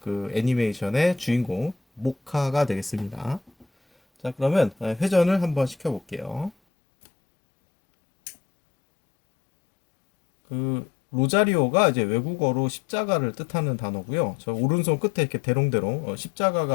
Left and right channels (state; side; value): drops out; right; at 6.5 s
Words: 애니메이션의 주인공 모카가 되겠습니다. 자, 그러면 회전을 한번 시켜볼게요. 그 로자리오가 이제 외국어로 십자가를 뜻하는 단어고요. 저 오른손 끝에 이렇게 대롱대롱